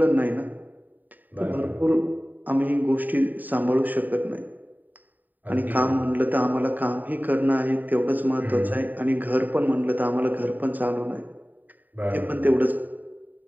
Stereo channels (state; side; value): late; left; 0.086 ms